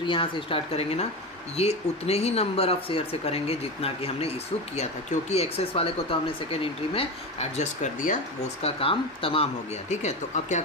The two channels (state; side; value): normal; both; correlation 0.21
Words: यहाँ से स्टार्ट करेंगे ना, ये उतने ही नंबर ऑफ शेयर से करेंगे जितना कि हमने इशू किया था, क्योंकि एक्सेस वाले को तो हमने सेकेंड एंट्री में एडजस्ट कर दिया, वो उसका काम तमाम हो गया, ठीक है। तो अब क्या